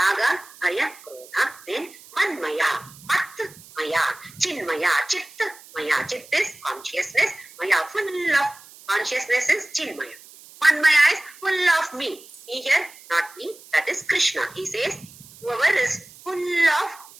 aya, krodha, then manmaya, matmaya, chinmaya, chittmaya. Chit is consciousness, maya full of consciousness is chinmaya. Manmaya is full of me. Here, not me, that is Krishna. He says, whoever is full of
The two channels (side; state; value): right; noise; hiss, 21 dB below the sound